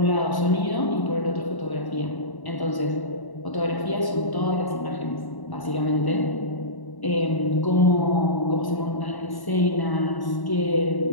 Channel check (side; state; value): right; late; 1.0 ms